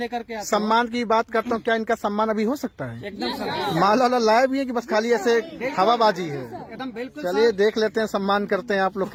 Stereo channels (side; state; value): both; identical; correlation 1.00